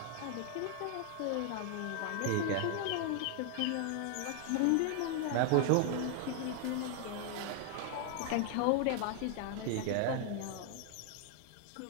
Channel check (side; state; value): both; different; correlation 0.00